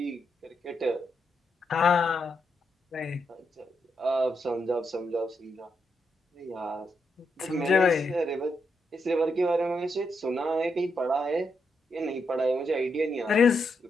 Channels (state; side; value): normal; both; correlation 0.81